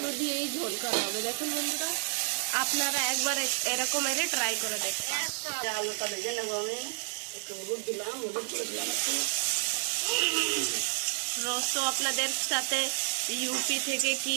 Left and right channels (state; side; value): silent; left; 58 dB below the other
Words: দিয়েই ঝোল করা হবে। দেখুন বন্ধুরা আপনারা একবার এরকম এর ট্রাই করে দেখুন। আলুটা ভেজে নেবো, আমি একটু হলুদ দিলাম, হলুদ করে দিলাম একটু। রোজ তো আপনাদের সাথে ইউপি থেকে কি